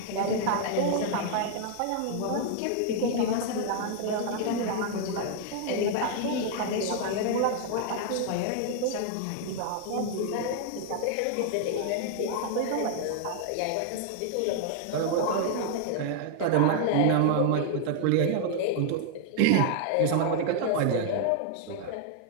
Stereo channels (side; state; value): both; different; correlation 0.00